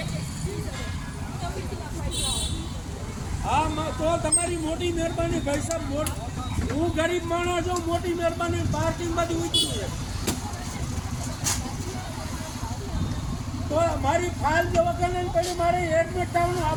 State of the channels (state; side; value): identical; both; correlation 1.00